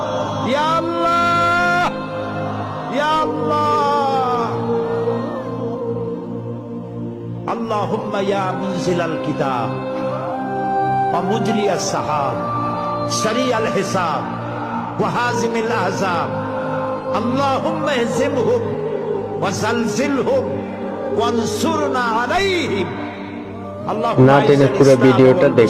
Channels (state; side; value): identical; both; correlation 1.00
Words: ইয়া আল্লাহ, ইয়া আল্লাহ। আল্লাহুম্মা ইয়া মুনজিলাল কিতাব ওয়া মুজরিয়াস সাহাব সারিয়াল হিসাব ওয়া হাজিমিল আহজাব, আল্লাহুম্মা ইহজিমহুম ওয়া জালজিলহুম ওয়ানসুরনা আলাইহিম। না টেনে পুরো ভিডিওটা